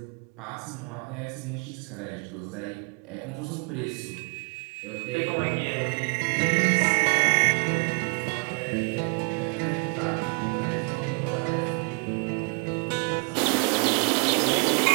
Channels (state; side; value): quieter; left; 36.1 dB